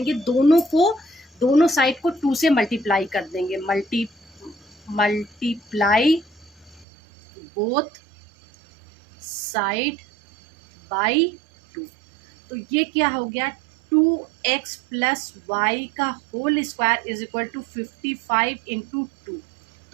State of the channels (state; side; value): drops out; left; at 6.9 s